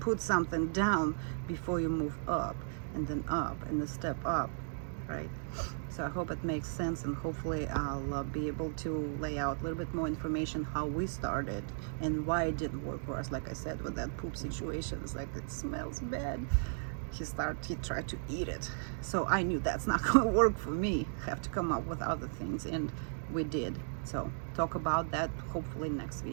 something down before you move up, and then up, and then step up, right? So I hope it makes sense, and hopefully I'll be able to lay out a little bit more information how we started and why it didn't work for us. Like I said, with that poop situation, it's like, it smells bad. He tried to eat it. So I knew that's not gonna work for me. Have to come up with other things, and we did. So talk about that hopefully next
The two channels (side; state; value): left; silent; digital silence